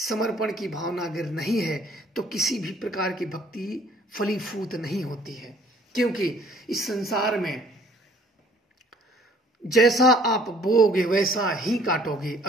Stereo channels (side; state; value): both; normal; correlation 0.58